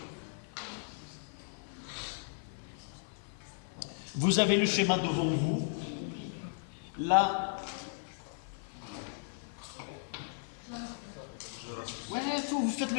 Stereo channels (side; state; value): right; silent; 54 dB below the other